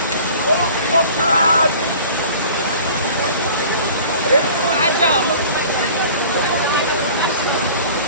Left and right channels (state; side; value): inverted; both; correlation -0.44